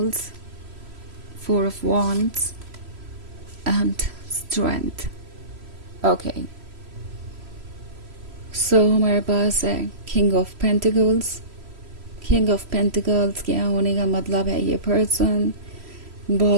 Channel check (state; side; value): late; left; 3.0 ms